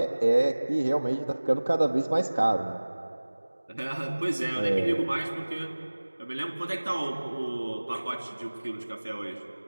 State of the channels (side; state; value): both; inverted; correlation -1.00